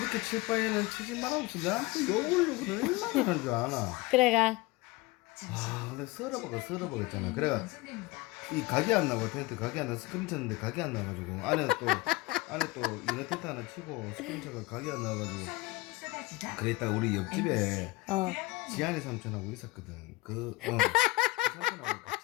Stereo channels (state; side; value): quieter; right; 20.9 dB